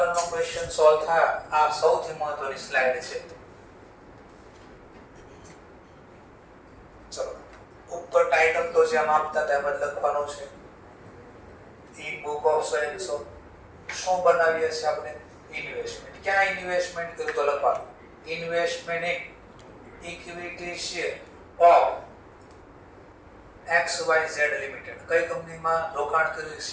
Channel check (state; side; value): identical; both; correlation 1.00